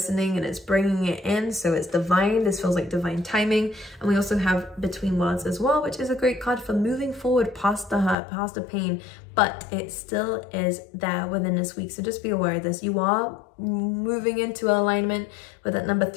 and it's bringing it in, so it's divine. This feels like divine timing. And we also have Between Worlds as well, which is a great card for moving forward past the hurt, past the pain, but it still is there within this week. So just be aware of this. You are moving into alignment with that number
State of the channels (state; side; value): drops out; right; at 8.2 s